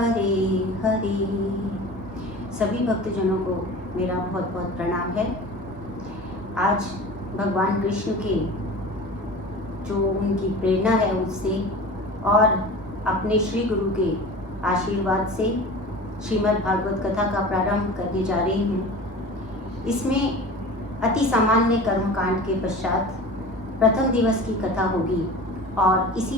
हरे। सभी भक्तजनों को मेरा बहुत बहुत प्रणाम है। आज भगवान कृष्ण के जो उनकी प्रेरणा है उससे और अपने श्री गुरु के आशीर्वाद से श्रीमद् भागवत कथा का प्रारंभ करने जा रही हूँ। इसमें अति सामान्य कर्मकांड के पश्चात प्रथम दिवस की कथा होगी और इसी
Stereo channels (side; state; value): both; normal; correlation 0.36